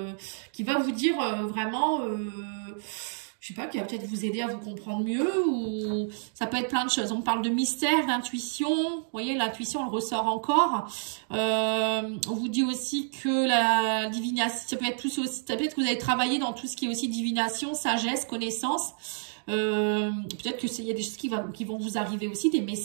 vous dire vraiment... je sais pas, qui va peut-être vous aider à vous comprendre mieux, ou ça peut être plein de choses. On parle de mystère, d'intuition, vous voyez, l'intuition, elle ressort encore. On vous dit aussi que la divination, ça peut être plus aussi, ça peut être que vous avez travaillé dans tout ce qui est aussi divination, sagesse, connaissance. Peut-être que il y a des choses qui vont vous arriver aussi, des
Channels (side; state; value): left; silent; digital silence